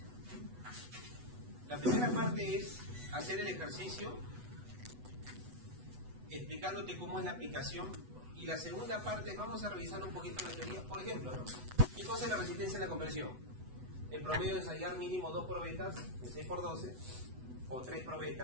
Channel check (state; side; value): late; left; 8.1 ms